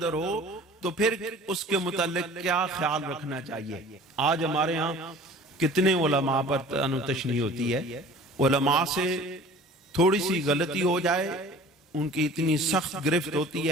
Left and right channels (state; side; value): normal; both; correlation 0.46